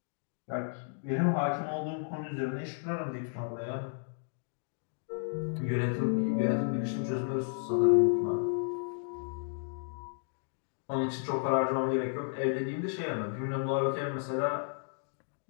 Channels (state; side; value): silent; right; digital silence